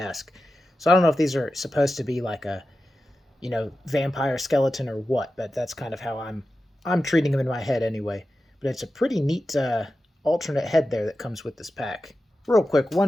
So I don't know if these are supposed to be like a, vampire skeleton or what, but that's kind of how I'm treating them in my head anyway. But it's a pretty neat alternate head there that comes with this pack. Real quick,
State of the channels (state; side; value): normal; both; correlation 0.92